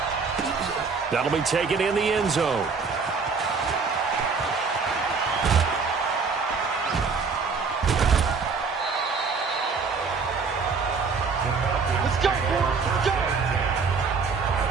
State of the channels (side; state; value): left; quieter; 5.0 dB